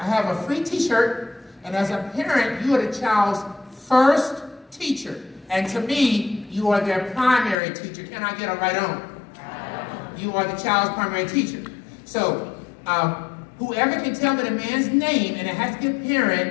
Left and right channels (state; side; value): drops out; right; at 7.6 s